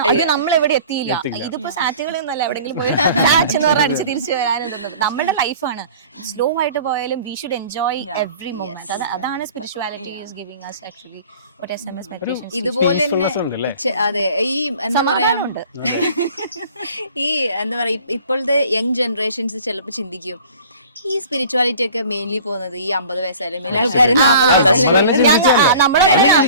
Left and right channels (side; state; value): both; inverted; correlation -0.46